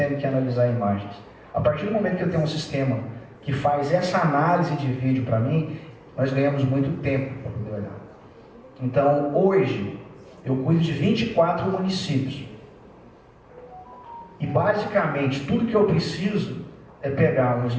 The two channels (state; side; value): identical; both; correlation 1.00